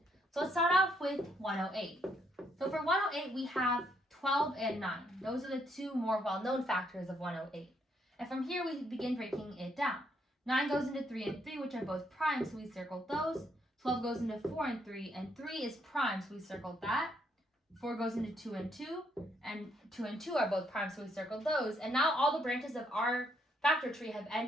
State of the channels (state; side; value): normal; both; correlation 0.73